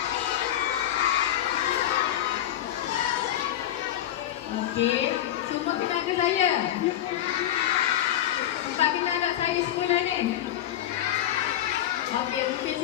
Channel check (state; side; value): quieter; right; 12.1 dB